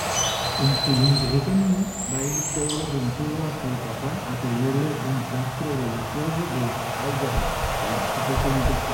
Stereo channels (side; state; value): both; identical; correlation 1.00